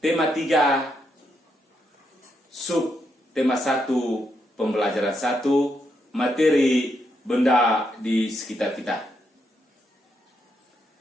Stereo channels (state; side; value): normal; both; correlation 0.80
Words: 3, tema 1, pembelajaran 1, materi benda di sekitar kita.